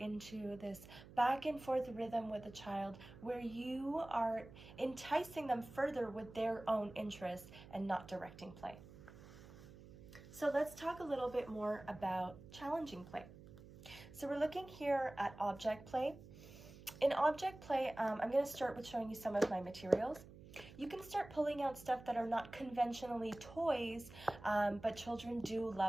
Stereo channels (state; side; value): noise; right; hum, 17 dB below the sound